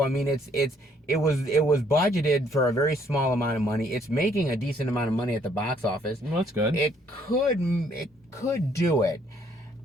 I mean, it was budgeted for a very small amount of money. It's making a decent amount of money at the box office. Well, that's good. It could do it.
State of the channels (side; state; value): both; normal; correlation 0.66